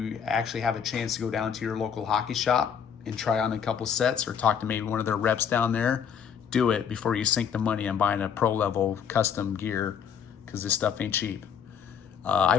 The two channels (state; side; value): quieter; right; 7.7 dB